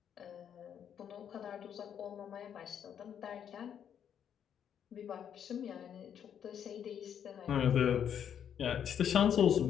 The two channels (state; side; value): quieter; right; 8.8 dB